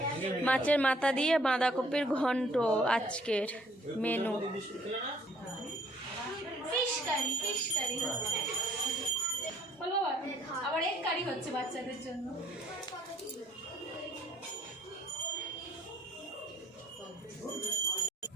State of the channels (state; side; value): normal; both; correlation 0.62